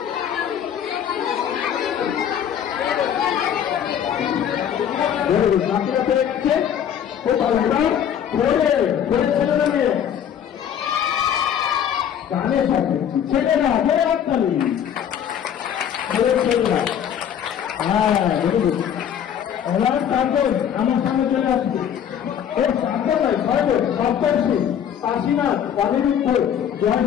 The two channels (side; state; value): right; quieter; 9.0 dB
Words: গানের সাথে ছেলেরা বলে হাততালি, ছেলেরা। হ্যাঁ দেখুন ওনার সাধন আমার সামনে চলে আসছে। ও সাধন নয় সর্ব সপ্তর্ষি কাশীনাথ বাণীবৃদ্ধ